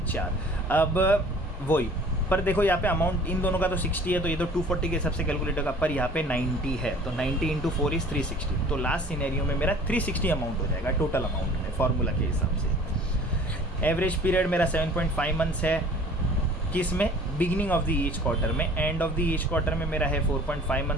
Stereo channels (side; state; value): both; normal; correlation 0.48